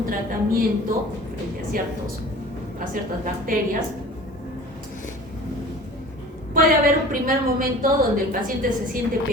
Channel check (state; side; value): normal; both; correlation 0.42